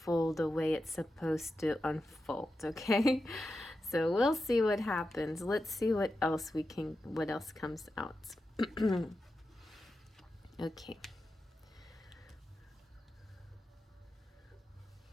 the way it's supposed to unfold, okay? So we'll see what happens. Let's see what else comes out. Okay.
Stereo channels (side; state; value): both; normal; correlation 0.90